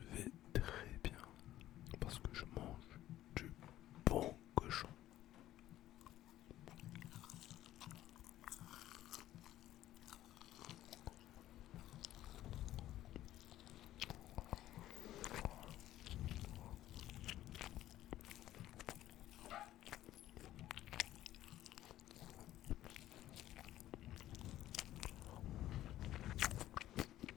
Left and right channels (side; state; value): right; quieter; 13.9 dB